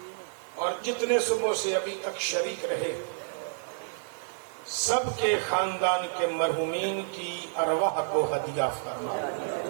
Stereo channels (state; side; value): silent; left; digital silence